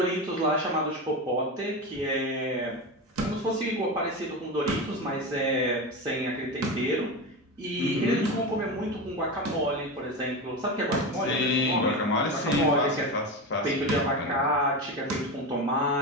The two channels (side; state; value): both; normal; correlation 0.20